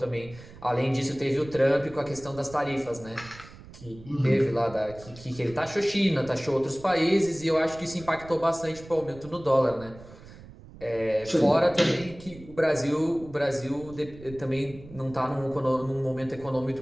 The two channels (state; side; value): noise; right; rumble, 18 dB below the sound